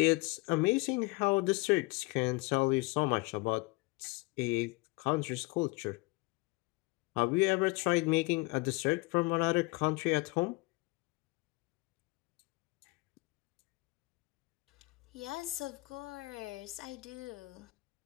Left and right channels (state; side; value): quieter; right; 24.9 dB